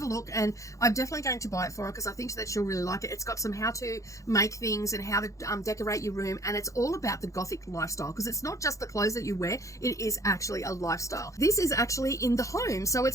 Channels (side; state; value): right; late; 0.15 ms